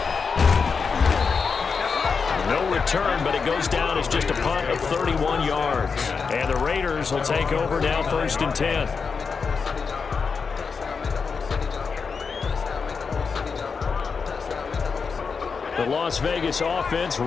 No return, but it goes down as just a punt of 31 yards. And the Raiders will take over now, 1st and 10. The Las Vegas offense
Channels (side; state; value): right; quieter; 5.4 dB